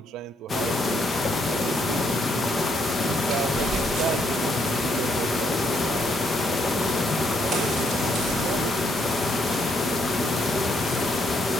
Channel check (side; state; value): both; normal; correlation 0.73